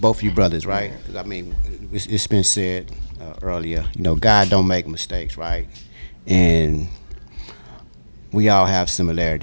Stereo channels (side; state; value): both; inverted; correlation -1.00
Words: of you brothers, right? Because I mean, it's been said earlier. You know, God don't make mistakes, right? And we all have